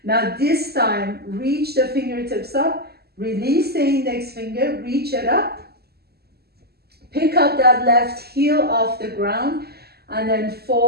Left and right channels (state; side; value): late; left; 0.46 ms